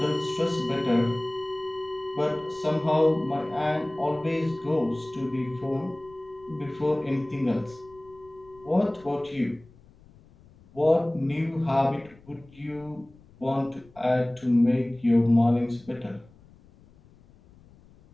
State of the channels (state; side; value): noise; left; rumble, 26 dB below the sound